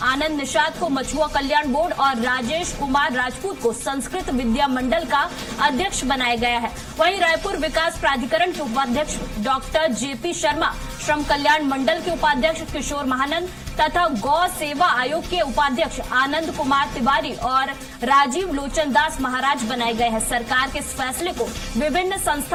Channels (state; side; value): identical; both; correlation 1.00